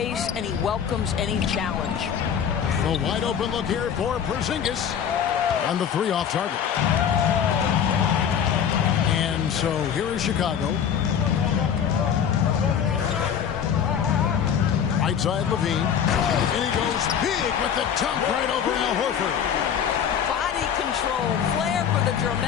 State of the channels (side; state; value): right; quieter; 8.2 dB